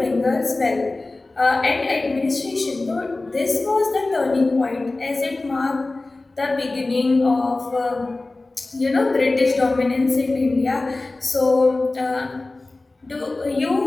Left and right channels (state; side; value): quieter; right; 3.1 dB